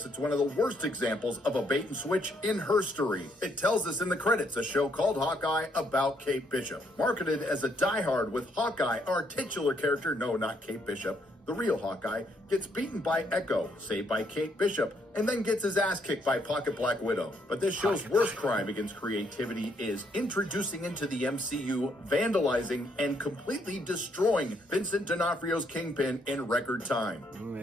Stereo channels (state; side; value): normal; both; correlation 0.72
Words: it's one of the worst examples of a bait and switch in herstory. It tells us in the credits a show called Hawkeye about Kate Bishop. Marketed as a diehard with Hawkeye, our titular character, no, not Kate Bishop, the real Hawkeye, gets beaten by Echo, saved by Kate Bishop, and then gets his ass kicked by Pocket Black Widow. But this show's worst crime against creativity is introducing into the MCU, vandalizing, and completely destroying Vincent D'Onofrio's Kingpin in record time.